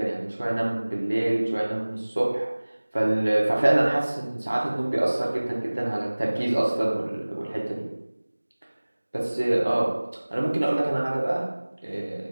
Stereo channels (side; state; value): both; inverted; correlation -1.00